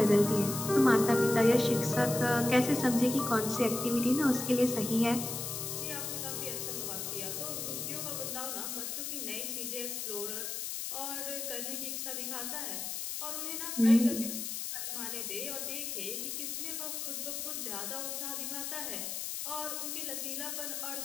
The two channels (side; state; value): left; noise; hiss, 4 dB below the sound